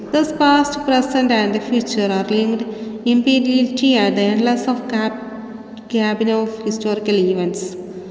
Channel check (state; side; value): identical; both; correlation 1.00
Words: Thus, past, present, and the future are linked imperiality at the endless of cabin of historical events.